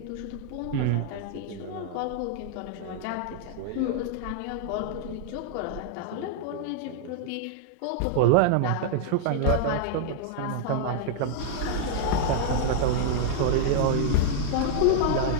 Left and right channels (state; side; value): different; both; correlation -0.01